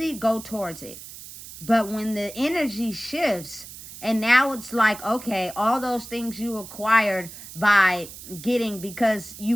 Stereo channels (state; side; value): noise; right; hiss, 14 dB below the sound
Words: go towards it. But when the energy shifts and now it's like, okay, all those things you acquired by getting because